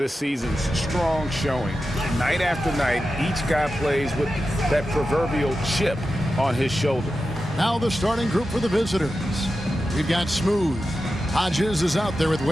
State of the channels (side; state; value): both; normal; correlation 0.91